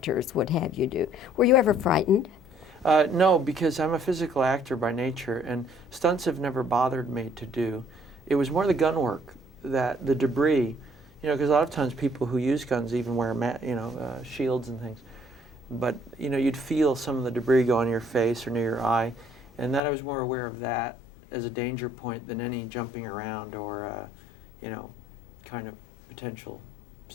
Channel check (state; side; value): drops out; right; at 19.8 s